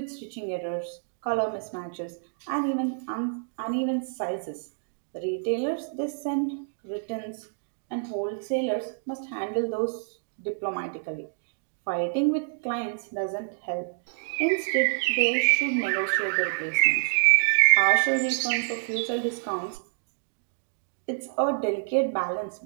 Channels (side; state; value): left; silent; digital silence